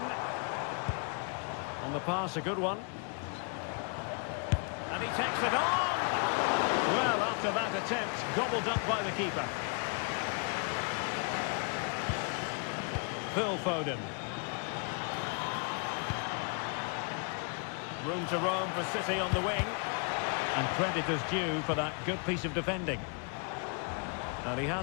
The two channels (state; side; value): quieter; right; 38.0 dB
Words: On the pass, a good one. And he takes it on. Well, after that attempt, gobbled up by the keeper. Phil Foden. Room to roam for City on the wing. And credit is due for that good piece of defending. And he